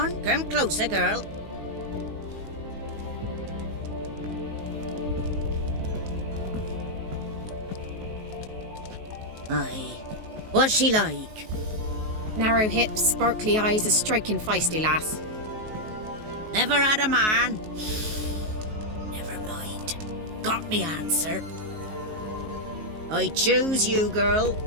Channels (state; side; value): late; left; 19 ms